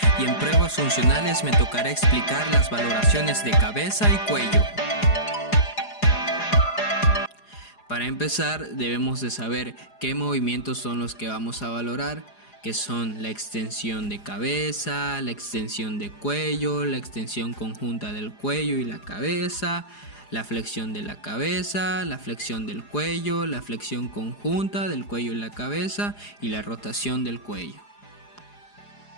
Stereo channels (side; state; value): right; late; 4.9 ms